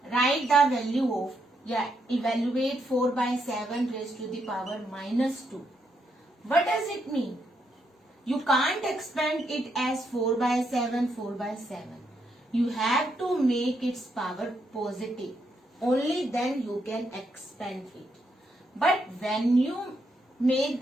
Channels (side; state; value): both; normal; correlation 0.78